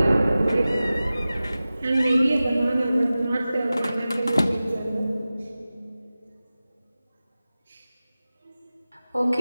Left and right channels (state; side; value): inverted; both; correlation -0.96